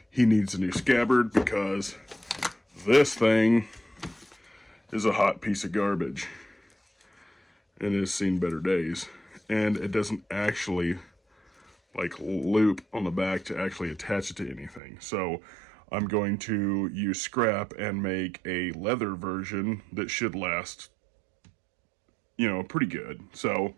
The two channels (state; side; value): drops out; left; at 14.8 s